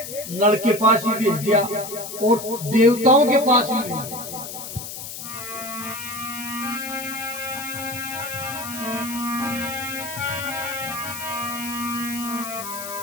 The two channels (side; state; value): left; noise; hiss, 9 dB below the sound